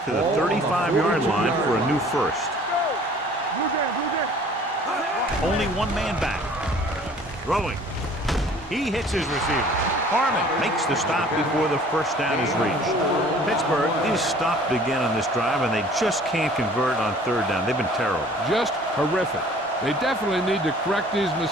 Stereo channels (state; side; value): normal; both; correlation 0.51